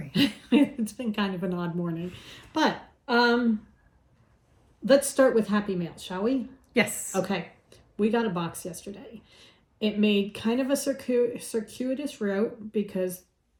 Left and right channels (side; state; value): both; identical; correlation 1.00